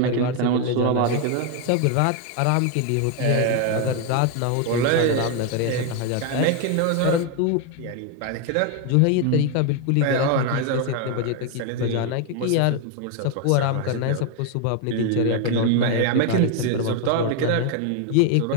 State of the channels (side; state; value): both; different; correlation 0.01